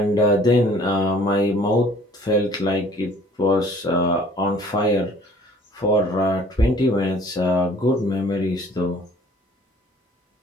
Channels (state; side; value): normal; both; correlation 0.53